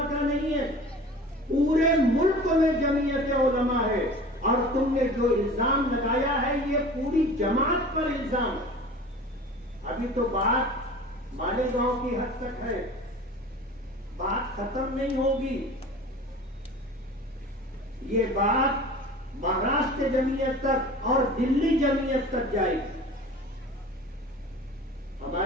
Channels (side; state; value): both; normal; correlation 0.40